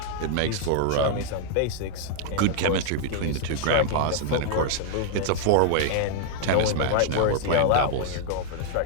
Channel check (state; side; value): different; both; correlation -0.01